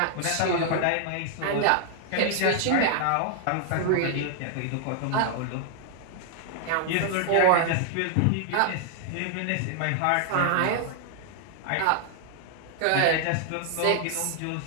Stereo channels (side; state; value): both; different; correlation 0.00